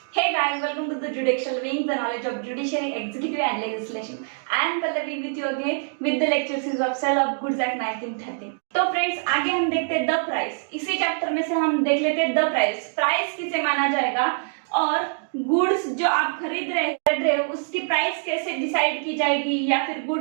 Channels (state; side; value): silent; left; digital silence